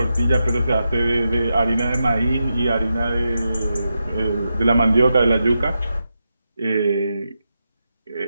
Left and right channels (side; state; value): both; inverted; correlation -0.87